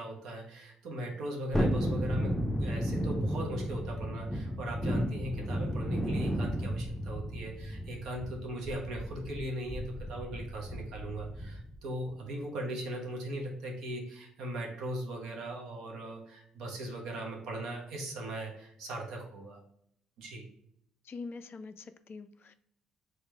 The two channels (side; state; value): both; normal; correlation 0.79